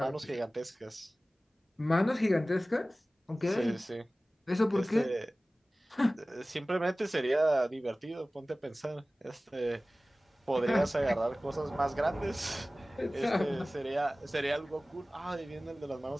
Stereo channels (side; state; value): both; normal; correlation 0.97